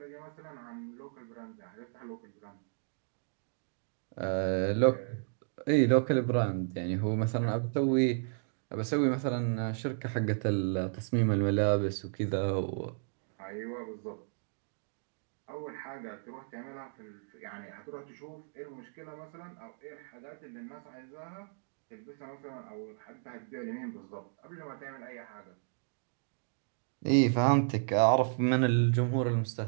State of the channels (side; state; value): left; silent; digital silence